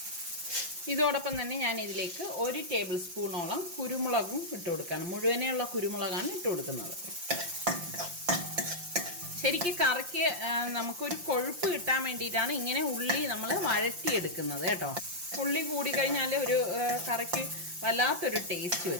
ഇതോടൊപ്പം തന്നെ ഞാൻ ഇതിലേക്ക് 1 ടേബിൾ സ്പൂണോളം കുരുമുളകും ഇട്ട് കൊടുക്കണം. മുഴുവനെയുള്ള കുരുമുളകാണ് ഇട്ട് കൊടുക്കുന്നത്. ശരിക്കും കറിക്ക് നമുക്കൊരു കൊഴുപ്പ് കിട്ടാൻ വേണ്ടിയിട്ടാണ് ഇങ്ങനെ ഉള്ളി നമ്മൾ വഴറ്റിയെടുക്കുന്നത് കേട്ടോ. ഉള്ളി കൂടിക്കഴിഞ്ഞാൽ ഒരു കറിക്ക് വല്ലാത്തൊരു ടേസ്റ്റ്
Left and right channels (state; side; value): late; left; 5.7 ms